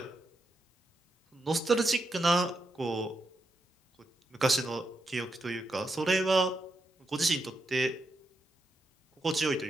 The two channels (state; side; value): normal; both; correlation 0.84